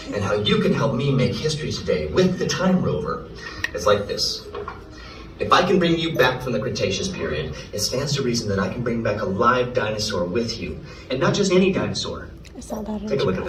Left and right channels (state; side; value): identical; both; correlation 1.00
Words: and how you can help me make history today with the Time Rover. It's like this. If I can bring you back from the Cretaceous period, it stands to reason that I can bring back a live dinosaur with you. And not just any dinosaur. Take a look at